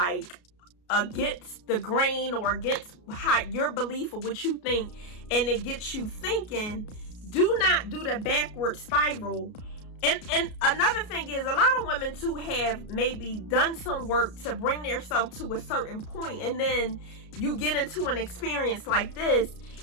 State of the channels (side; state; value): right; late; 33 ms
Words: against the grain or against how your belief of what you think, and it gets you thinking, do not do the backward spiral. And another thing is, a lot of women too have maybe done some work to bring themselves to a certain point, and then you get into an experience like this